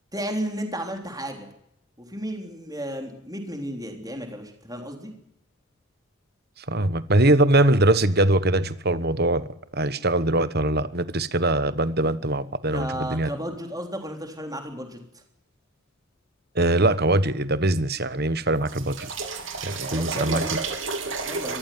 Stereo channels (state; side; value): normal; both; correlation 0.32